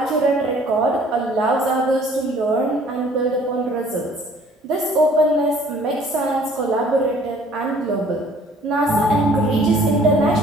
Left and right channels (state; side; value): normal; both; correlation 0.55